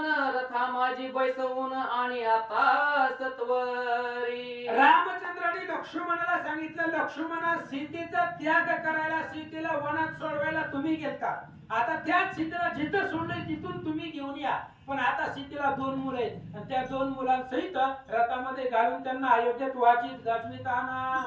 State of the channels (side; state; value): both; identical; correlation 1.00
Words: रथा माझी बैसवून आणि आता सत्वरी. रामचंद्राने लक्ष्मणाला सांगितलं, लक्ष्मणा सीतेचा त्याग करायला, सीतेला वनात सोडवायला तुम्ही गेलता. आता त्याच सीतेला जिथं सोडलंय तिथून तुम्ही घेऊन या. पण आता सीतेला 2 मुलं आहेत आणि त्या 2 मुलांसहित रथामध्ये घालून त्यांना अयोध्येत वाचित गाजवीत आणा.